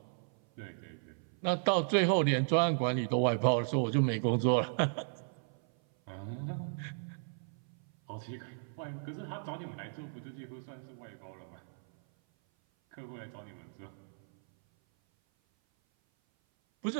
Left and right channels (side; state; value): left; silent; 54 dB below the other